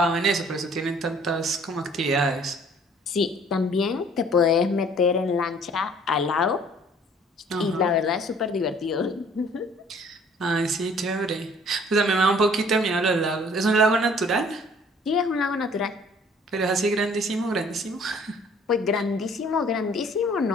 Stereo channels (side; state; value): both; normal; correlation 0.55